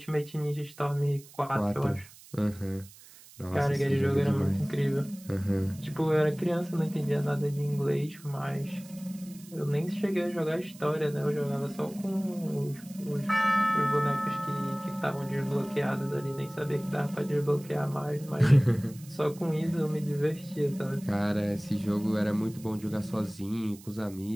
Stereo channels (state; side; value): noise; right; hiss, 21 dB below the sound